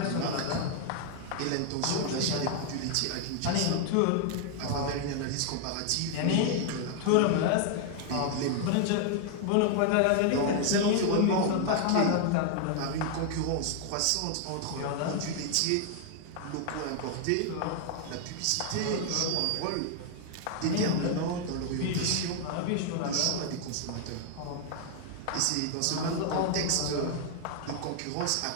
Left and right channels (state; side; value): different; both; correlation 0.00